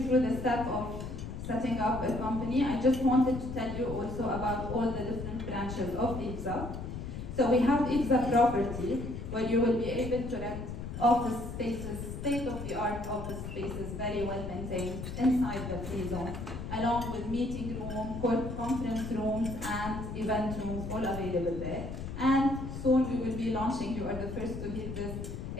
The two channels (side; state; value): left; noise; rumble, 7 dB below the sound